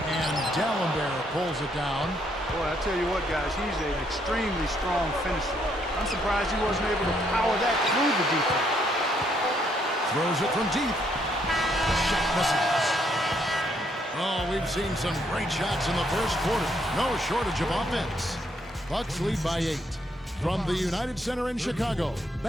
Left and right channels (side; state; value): both; normal; correlation 0.72